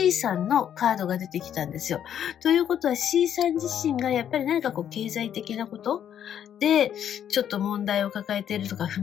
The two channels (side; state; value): right; quieter; 9.6 dB